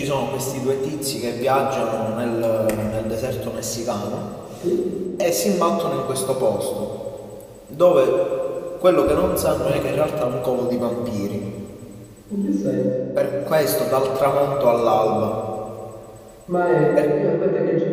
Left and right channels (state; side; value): identical; both; correlation 1.00